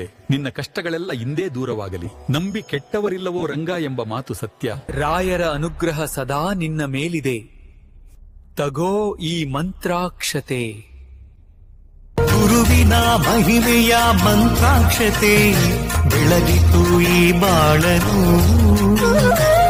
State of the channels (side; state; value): both; identical; correlation 1.00